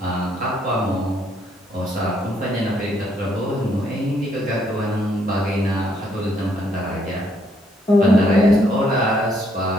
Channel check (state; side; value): normal; both; correlation 0.70